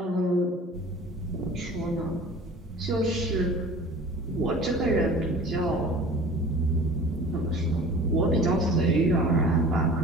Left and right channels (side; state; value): both; normal; correlation 0.43